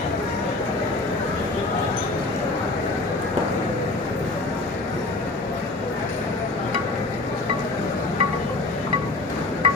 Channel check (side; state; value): right; quieter; 3.2 dB